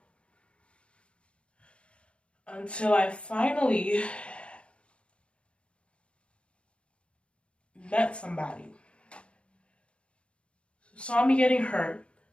Until I finally met somebody who saw me getting hurt,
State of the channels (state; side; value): late; right; 0.058 ms